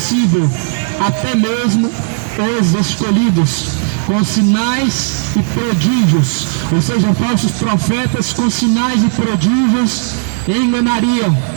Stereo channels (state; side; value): silent; left; digital silence